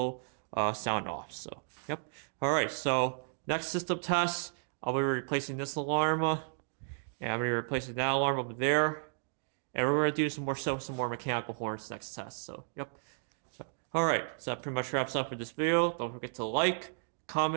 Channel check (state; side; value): silent; left; digital silence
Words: sound off. So yep. All right, so next system test, I'll be replacing this alarm. And I'm going to be replacing that alarm over there. And we're going to do some more mechanical horns next test. So, yep. So, all right. So that pretty much wraps up for this video. Don't forget to like,